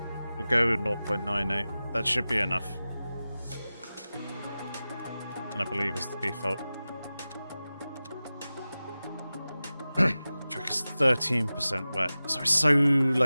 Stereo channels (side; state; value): both; inverted; correlation -0.96